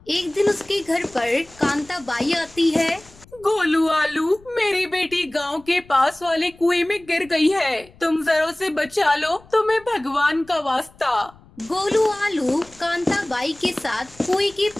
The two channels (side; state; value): left; noise; rumble, 25 dB below the sound